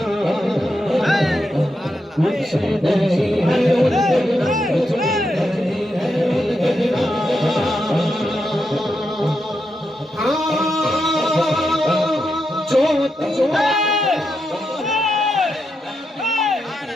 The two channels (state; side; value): normal; both; correlation 0.85